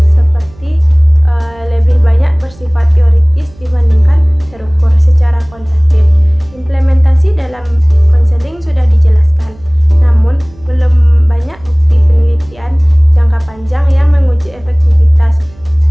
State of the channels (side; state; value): right; noise; hum, 25 dB below the sound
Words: seperti lebih banyak bersifat teoritis dibandingkan terukur secara kuantitatif. Implementasi dalam konseling sudah dijelaskan, namun belum banyak bukti penelitian jangka panjang yang menguji efektivitas